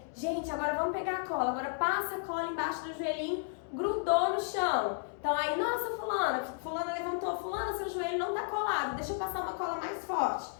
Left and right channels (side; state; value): right; silent; digital silence